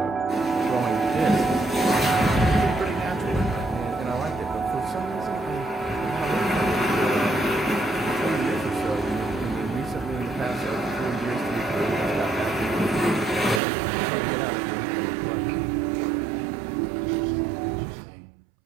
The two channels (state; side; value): drops out; left; at 13.6 s